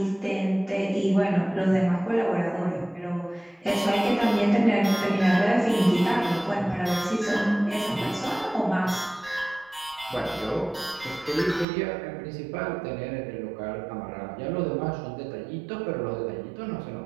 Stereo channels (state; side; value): drops out; left; at 11.7 s